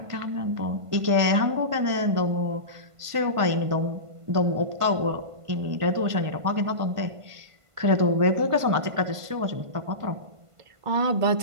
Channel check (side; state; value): left; late; 1.5 ms